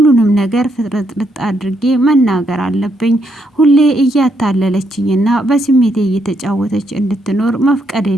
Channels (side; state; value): both; normal; correlation 0.77